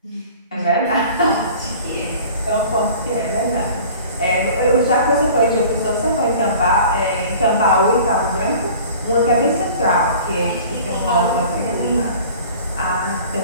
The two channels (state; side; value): inverted; both; correlation -0.45